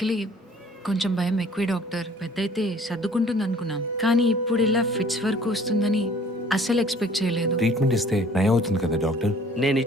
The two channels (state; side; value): normal; both; correlation 0.53